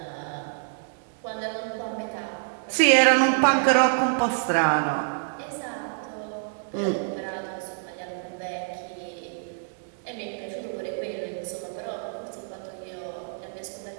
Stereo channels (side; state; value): left; silent; digital silence